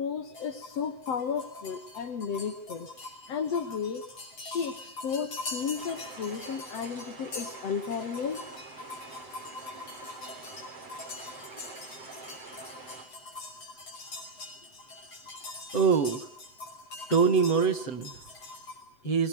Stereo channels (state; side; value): late; right; 7.8 ms